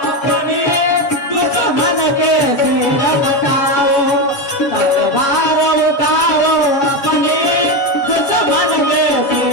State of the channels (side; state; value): right; late; 7.2 ms